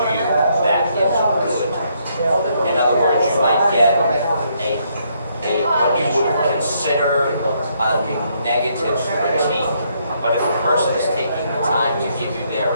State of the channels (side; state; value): both; inverted; correlation -0.73